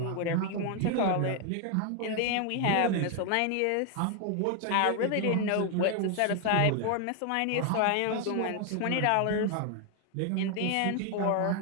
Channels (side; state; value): both; different; correlation 0.01